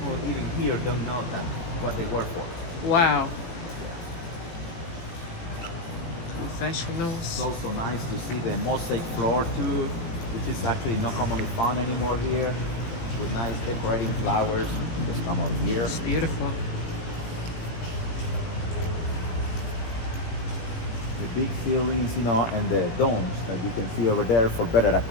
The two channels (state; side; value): late; right; 18 ms